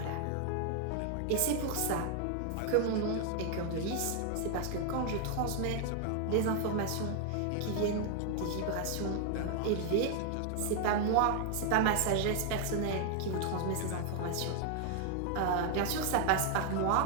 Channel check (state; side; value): different; both; correlation 0.00